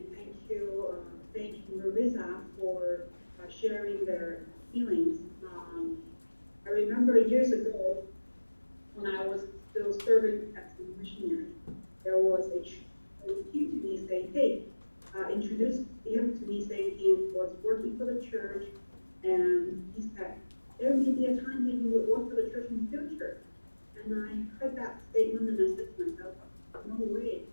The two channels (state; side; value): inverted; both; correlation -1.00